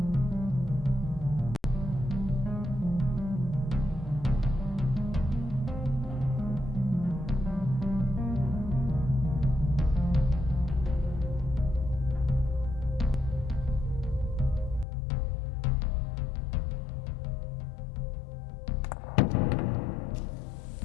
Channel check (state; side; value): drops out; right; at 14.9 s